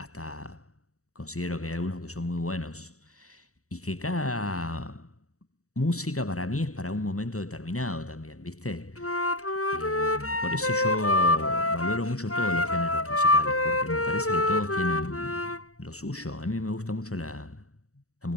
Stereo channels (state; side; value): late; right; 0.65 ms